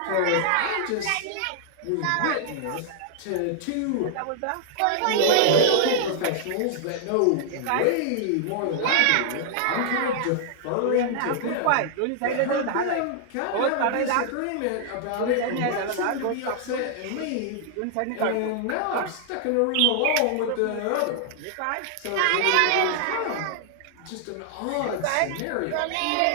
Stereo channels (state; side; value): different; both; correlation -0.01